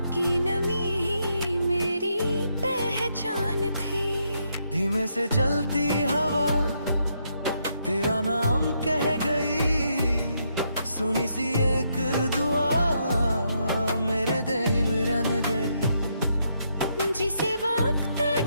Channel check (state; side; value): inverted; both; correlation -0.77